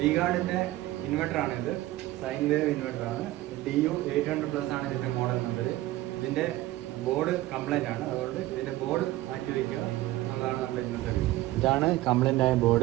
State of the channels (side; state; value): left; quieter; 16.6 dB